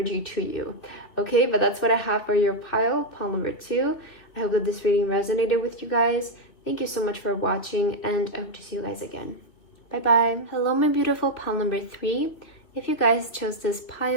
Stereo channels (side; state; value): right; late; 2.7 ms